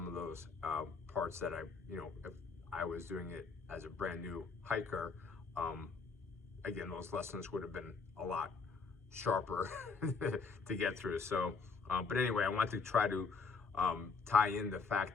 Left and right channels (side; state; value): right; quieter; 4.7 dB